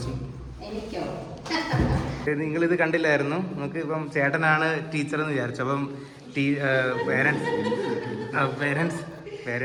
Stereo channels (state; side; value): identical; both; correlation 1.00